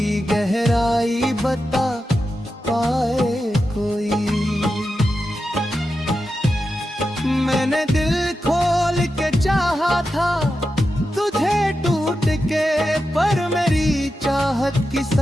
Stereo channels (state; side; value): normal; both; correlation 0.90